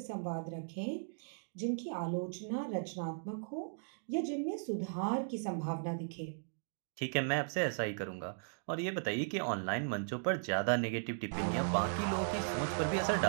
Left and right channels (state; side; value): silent; left; digital silence